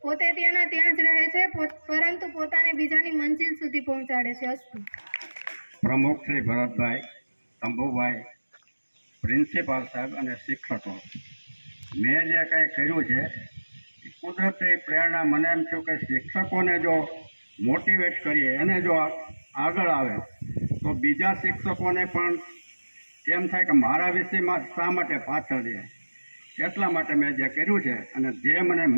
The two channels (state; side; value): inverted; both; correlation -1.00